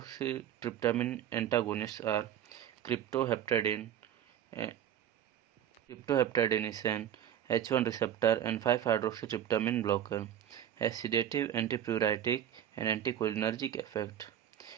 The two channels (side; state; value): left; quieter; 10.4 dB